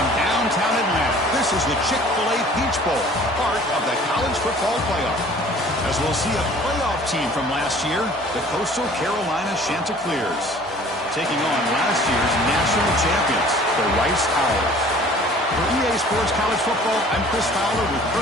downtown Atlanta. This is the Chick-fil-A Peach Bowl, part of the college football playoff. As we'll see a playoff team from last year, the Coastal Carolina Chanticleers, taking on last year's national champions, the Rice Owls. For EA Sports College Football, I'm Chris Fowler with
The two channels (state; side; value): normal; both; correlation 0.50